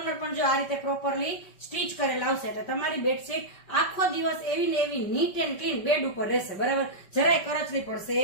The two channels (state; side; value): late; right; 5.3 ms